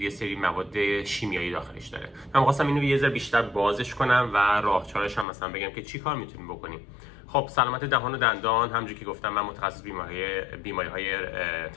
سری مواد شیمیایی داخلش داره. من خواستم اینو یه ذره بیشتر بازش کنم و راهکارش هم مثلا بگم که چی کار میتونیم بکنیم. خب سلامت دهان و دندان، همونجوری که گفتم من متخصص بیماری‌های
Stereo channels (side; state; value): right; drops out; at 5.2 s